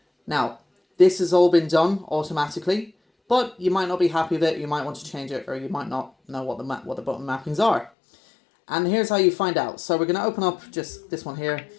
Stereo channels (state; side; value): drops out; right; at 7.9 s